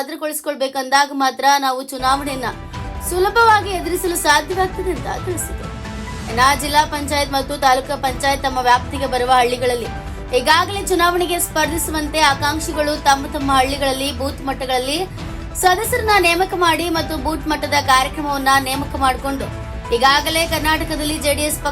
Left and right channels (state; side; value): identical; both; correlation 1.00